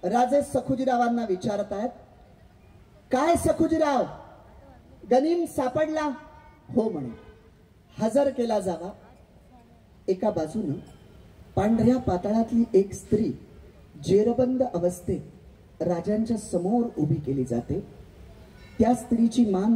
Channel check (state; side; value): identical; both; correlation 1.00